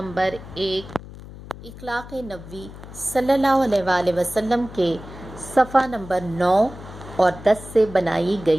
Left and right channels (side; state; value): left; noise; hum, 15 dB below the sound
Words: 1 اخلاق نبوی صلی اللہ علیہ وآلہ وسلم کے صفحہ نمبر 9 اور 10 سے بنائی